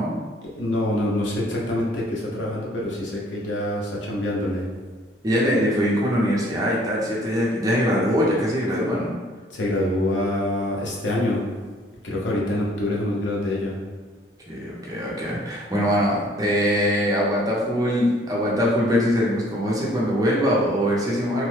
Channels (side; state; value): both; normal; correlation 0.58